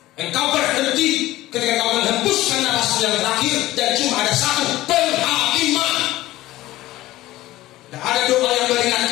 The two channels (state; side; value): quieter; right; 16.5 dB